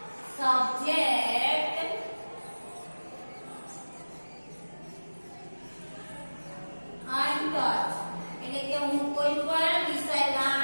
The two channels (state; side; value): inverted; both; correlation -1.00